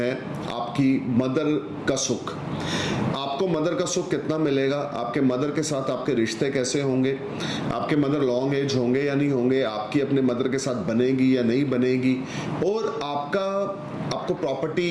आपकी मदर का सुख। आपको मदर का सुख कितना मिलेगा, आपके मदर के साथ आपके रिश्ते कैसे होंगे, आपके मदर लॉन्ग एज होंगे या नहीं होंगे, आपकी अपने मदर के साथ बनेगी या नहीं बनेगी, और आपको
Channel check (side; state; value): both; identical; correlation 1.00